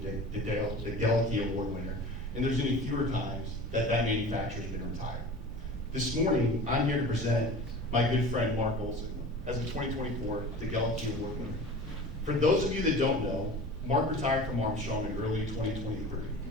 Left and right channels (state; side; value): noise; right; rumble, 14 dB below the sound